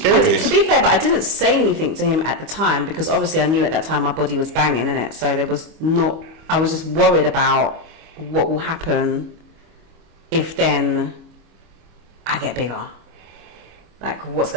To be fair, but I didn't say anything to him at the time because obviously I knew at that time my body was banging, innit? So there was not. I was just worried about what will happen if then I get bigger. Like, what's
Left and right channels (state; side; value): late; left; 25 ms